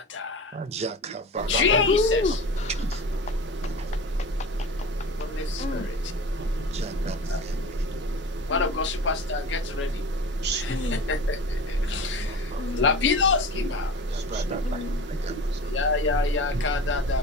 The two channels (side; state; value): both; normal; correlation 0.34